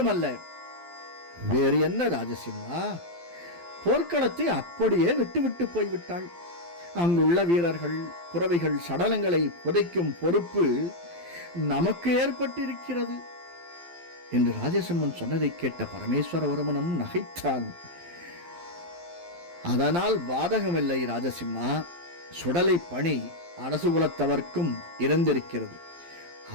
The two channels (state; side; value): late; left; 12 ms